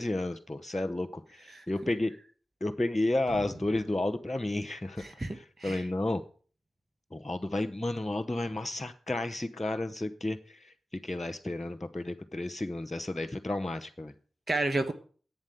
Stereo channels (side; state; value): both; normal; correlation 0.94